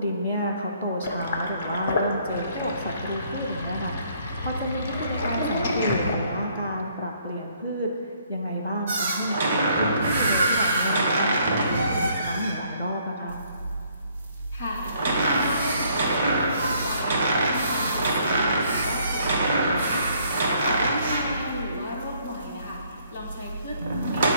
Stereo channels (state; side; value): inverted; both; correlation -0.65